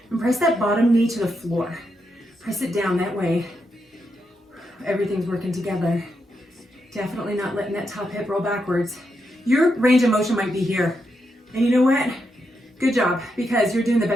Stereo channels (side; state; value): both; normal; correlation 0.83